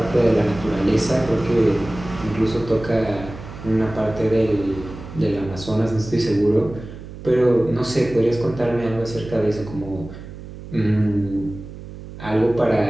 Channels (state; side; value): noise; right; hum, 13 dB below the sound